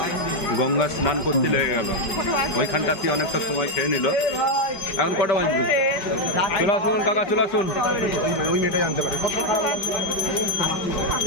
গঙ্গা স্নান করতে লেগে গেল। ওইখানটাতে অনেকটা সময় খেয়ে নিল। এখন কটা বাজবে? চলে আসুন কাকা, চলে আসুন।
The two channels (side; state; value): right; late; 5.1 ms